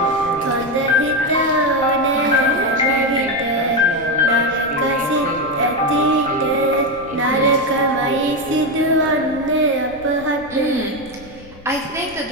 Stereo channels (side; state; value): left; noise; rumble, 21 dB below the sound